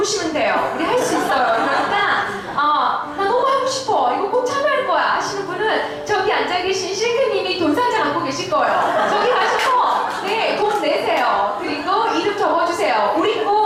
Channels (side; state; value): both; identical; correlation 1.00